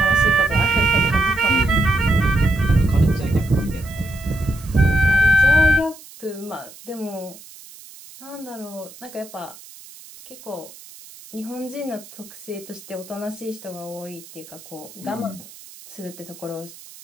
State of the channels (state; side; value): noise; right; hiss, 19 dB below the sound